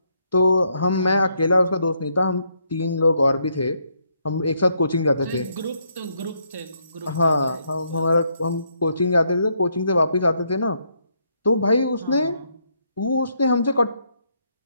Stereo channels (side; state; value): both; inverted; correlation -0.74